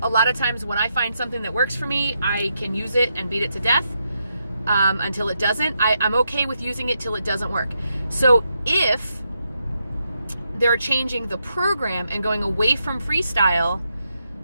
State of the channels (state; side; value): inverted; both; correlation -0.82